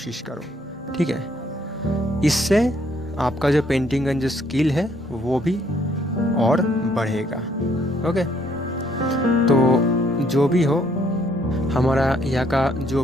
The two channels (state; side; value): normal; both; correlation 0.67